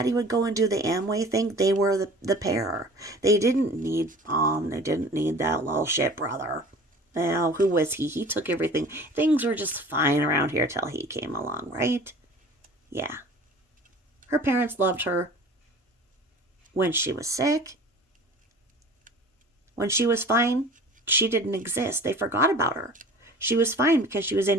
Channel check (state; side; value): normal; both; correlation 0.44